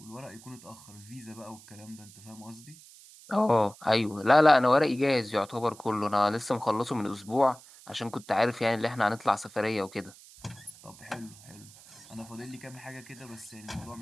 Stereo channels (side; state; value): right; noise; hiss, 21 dB below the sound